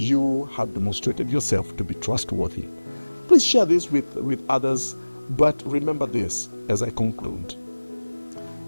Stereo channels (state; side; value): inverted; both; correlation -1.00